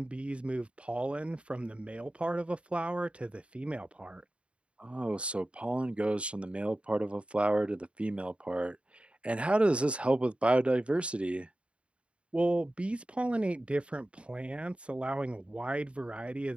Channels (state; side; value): late; left; 0.059 ms